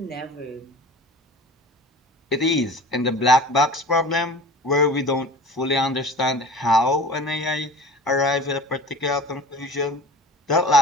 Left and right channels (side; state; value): both; normal; correlation 0.39